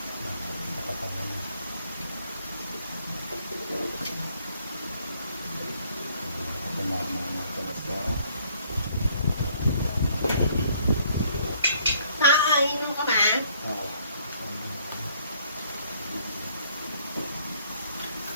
Inom ka ba?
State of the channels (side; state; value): both; inverted; correlation -0.63